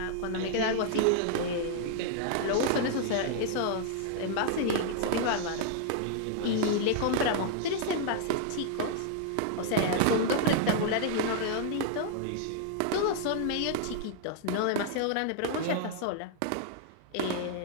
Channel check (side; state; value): both; different; correlation -0.01